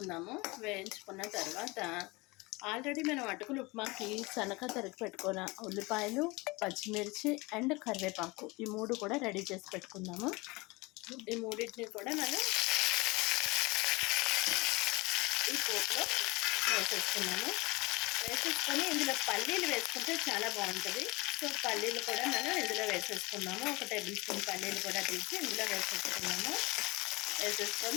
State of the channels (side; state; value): right; quieter; 24.3 dB